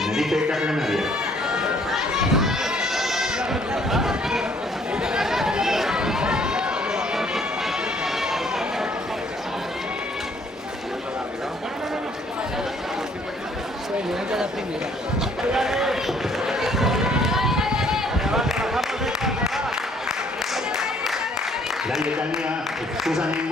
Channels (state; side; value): normal; both; correlation 0.62